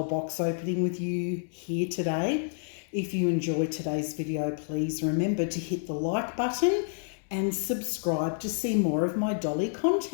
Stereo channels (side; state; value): right; silent; digital silence